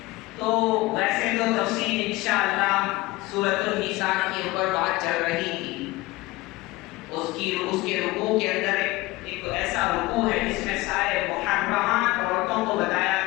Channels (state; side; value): quieter; right; 20.5 dB